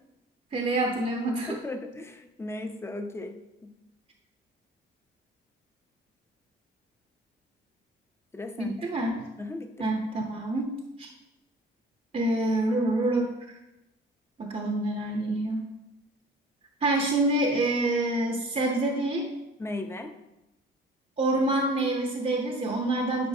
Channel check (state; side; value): normal; both; correlation 0.47